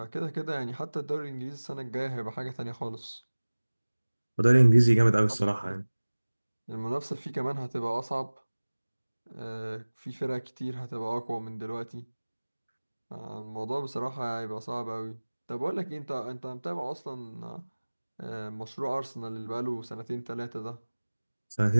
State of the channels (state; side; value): inverted; both; correlation -1.00